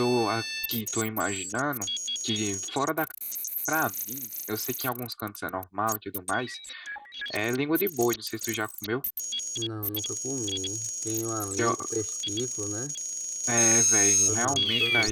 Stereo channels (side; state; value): both; identical; correlation 1.00